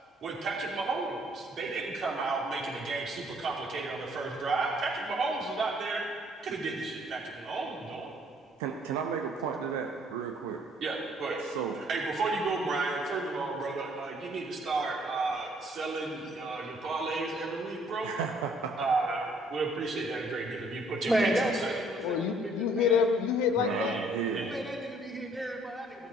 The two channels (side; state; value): both; normal; correlation 0.61